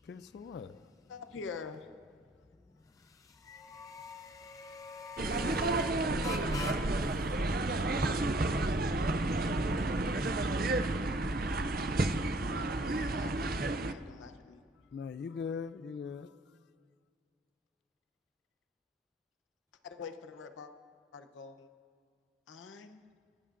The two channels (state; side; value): normal; both; correlation 0.58